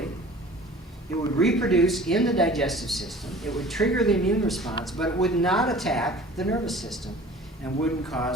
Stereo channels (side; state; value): both; normal; correlation 0.45